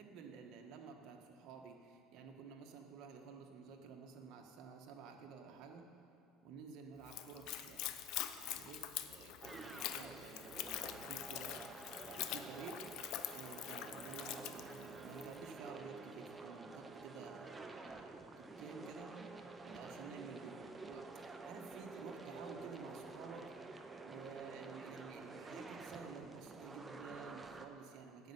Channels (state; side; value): normal; both; correlation 0.42